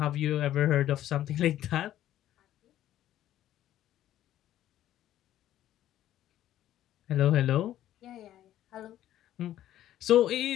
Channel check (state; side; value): quieter; right; 12.6 dB